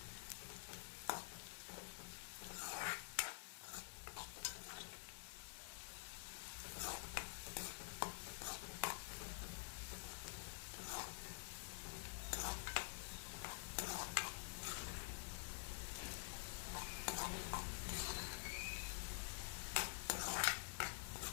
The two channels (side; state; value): right; silent; digital silence